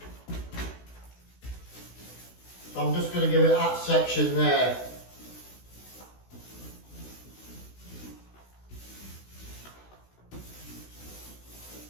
So I'm just going to give it that section there.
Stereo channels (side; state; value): right; late; 16 ms